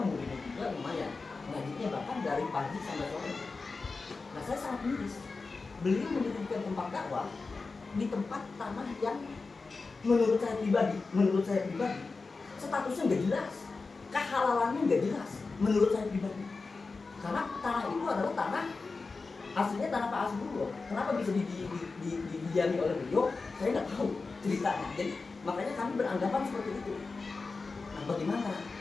muridnya juga lumayan, ngajinya bahkan dari pagi sampai sore. Nah saya sangat miris, beliau mendirikan tempat dakwah di tempat tanah yang menurut saya pribadi statusnya nggak jelas, kehalalannya nggak jelas menurut saya pribadi. Karena tanah itu adalah tanah aslinya tanah Pak Asbullah. Kenapa bisa didiami oleh beliau? Saya nggak tahu ceritanya. Jadi makanya kami beranggapan seperti itu. Nah bagaimana?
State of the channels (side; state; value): right; quieter; 4.1 dB